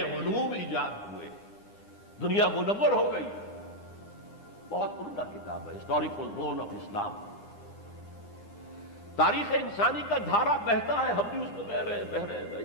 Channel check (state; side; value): late; right; 9.9 ms